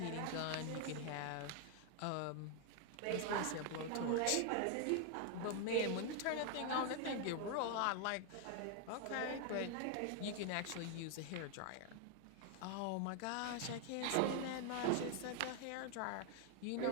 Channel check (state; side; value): different; both; correlation 0.00